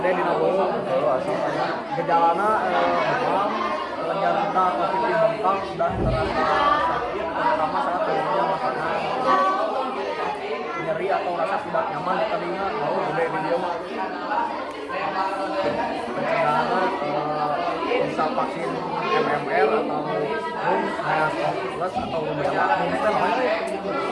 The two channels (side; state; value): both; identical; correlation 1.00